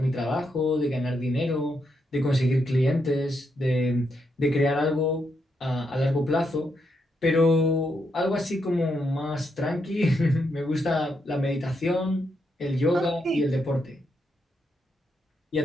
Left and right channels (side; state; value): both; normal; correlation 0.80